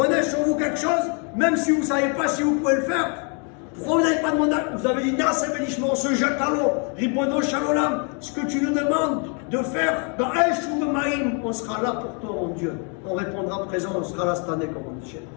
sur vous quelque chose, même si vous ne savez pas si vous pouvez le faire. Pourquoi vous n'avez pas demandé? Vous avez dit, Nasa Benishma, on se jette à l'eau. Ribono Shalolam, ce que tu nous demandes de faire, dans Esh ou Maïm, on sera là pour toi, mon Dieu. On répondra présent, on sera là cette année, comme on dit.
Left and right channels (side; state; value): right; quieter; 37.8 dB